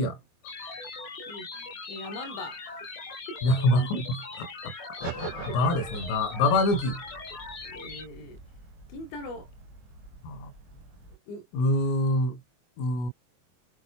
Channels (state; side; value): late; right; 24 ms